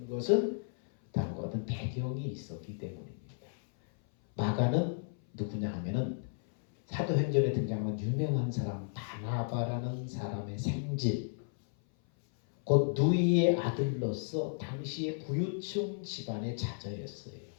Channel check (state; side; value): silent; right; 55 dB below the other